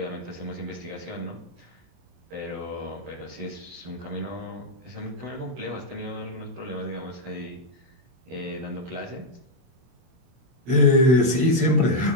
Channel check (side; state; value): left; late; 24 ms